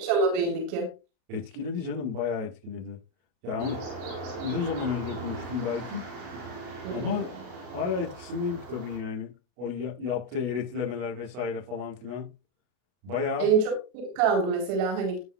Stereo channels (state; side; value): late; left; 33 ms